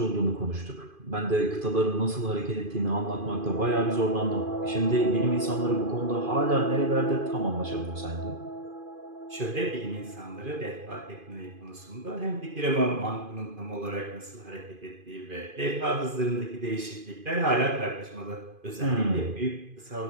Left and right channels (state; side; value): late; left; 2.5 ms